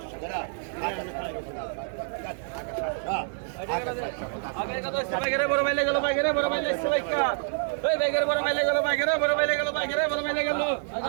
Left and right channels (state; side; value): silent; left; 60 dB below the other